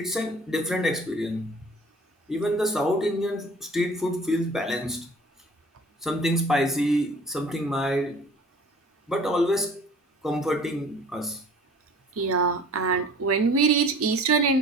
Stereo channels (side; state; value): both; normal; correlation 0.48